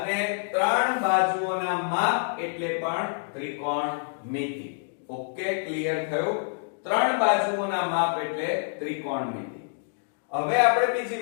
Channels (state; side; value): silent; right; digital silence